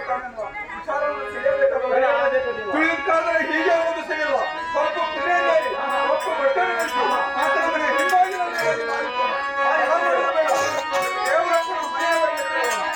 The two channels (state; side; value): identical; both; correlation 1.00